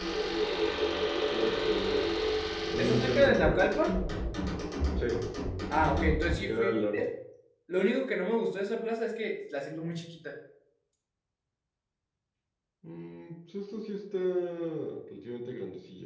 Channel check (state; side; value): identical; both; correlation 1.00